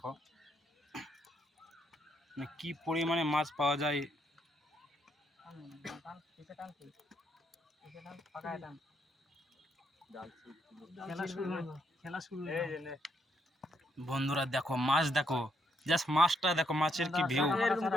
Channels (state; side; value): normal; both; correlation 0.75